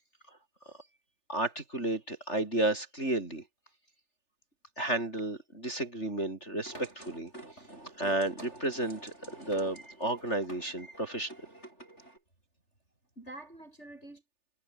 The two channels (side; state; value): right; late; 3.4 ms